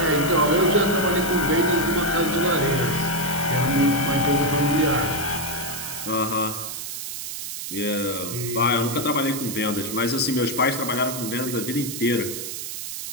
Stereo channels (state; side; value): noise; right; hiss, 7 dB below the sound